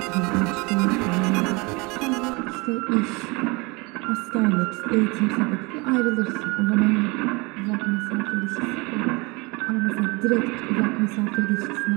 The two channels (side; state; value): left; quieter; 27.0 dB